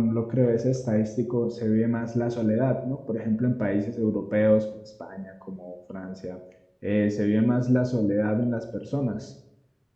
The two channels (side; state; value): both; identical; correlation 1.00